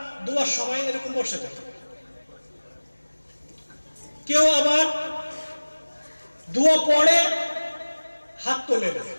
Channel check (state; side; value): inverted; both; correlation -1.00